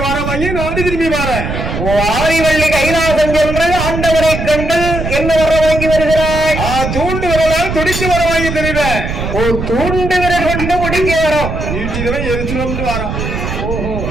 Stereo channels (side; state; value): right; noise; rumble, 4 dB below the sound